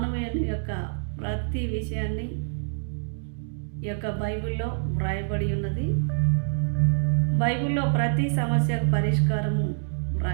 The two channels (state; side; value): silent; left; digital silence